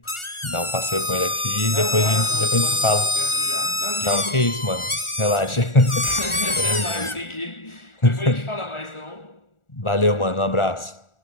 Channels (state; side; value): late; right; 1.4 ms